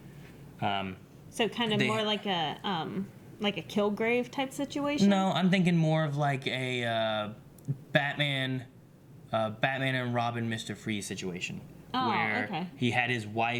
So kind of more like a Kilgrave type situation? No, I'm thinking more of like a Batman and Robin, Mr. Freeze situation. Oh, where okay. he had his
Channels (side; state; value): both; identical; correlation 1.00